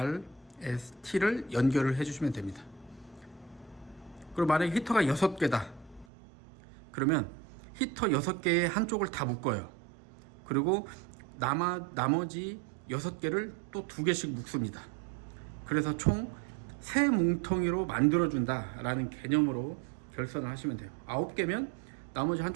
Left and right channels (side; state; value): left; drops out; at 6.1 s